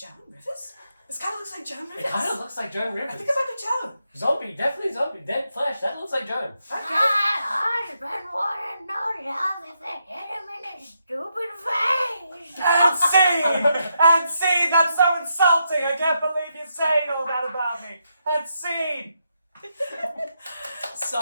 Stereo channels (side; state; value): both; inverted; correlation -0.81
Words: Rivers? This kind of looks like Joan Rivers. It kind of looks like Joan Rivers. I think I might be Joan. Zombie, definitely zombie. Dead flesh. That looks like Joan. My husband wanna know love if they hit him in his stupid face. And scene! That's so insulting! I can't believe you're saying all that about me! And scene!